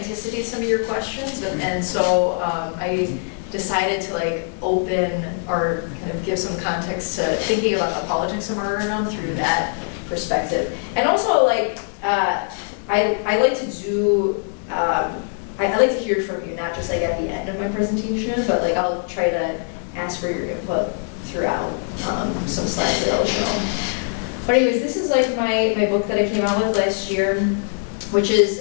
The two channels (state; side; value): silent; right; 56 dB below the other